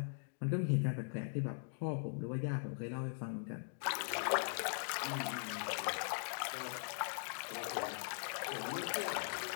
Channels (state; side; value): silent; right; digital silence